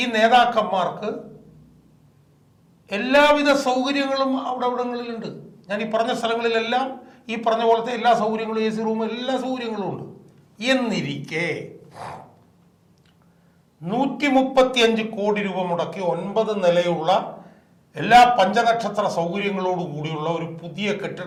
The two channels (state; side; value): identical; both; correlation 1.00